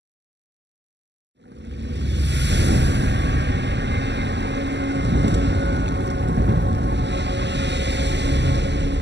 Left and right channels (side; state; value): left; late; 0.51 ms